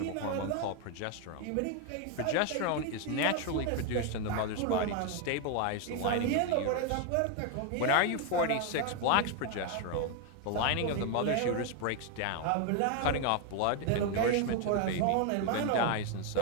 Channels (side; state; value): both; different; correlation 0.01